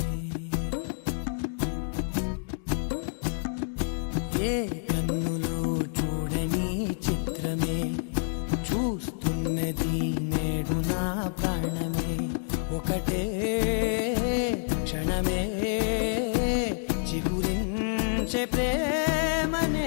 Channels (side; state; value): right; silent; digital silence